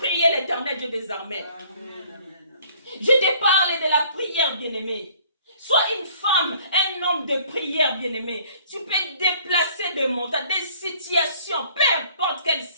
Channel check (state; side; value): inverted; both; correlation -0.56